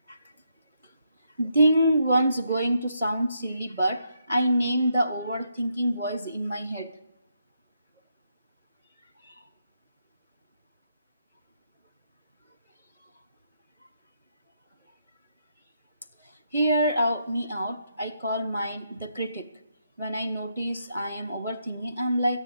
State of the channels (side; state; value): both; inverted; correlation -0.78